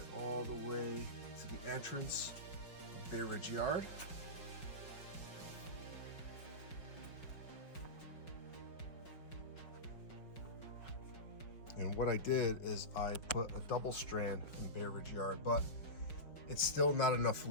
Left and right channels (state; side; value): late; right; 5.4 ms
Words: all the way to the entrance of Bay Ridge Yard. And what I did is I put a double strand in Bay Ridge Yard, but it's still not enough